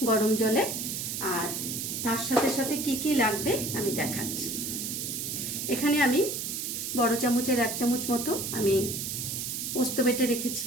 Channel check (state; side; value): noise; right; hiss, 4 dB below the sound